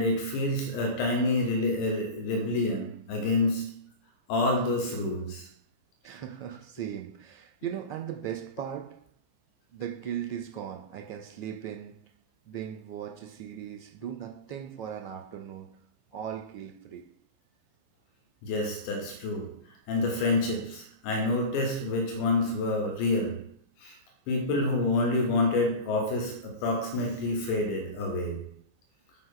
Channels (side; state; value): right; late; 15 ms